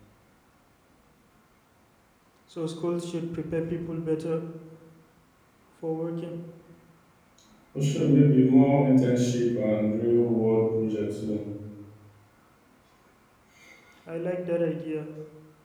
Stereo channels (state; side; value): identical; both; correlation 1.00